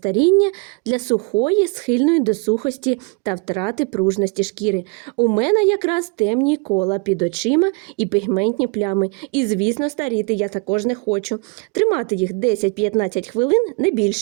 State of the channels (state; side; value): quieter; left; 31.5 dB